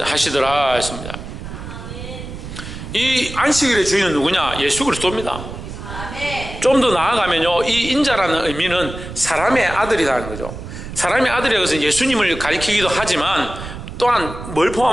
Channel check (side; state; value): right; noise; rumble, 10 dB below the sound